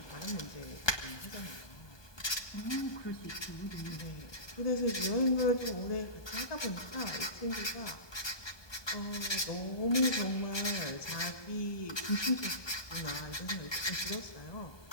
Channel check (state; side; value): late; right; 1.3 ms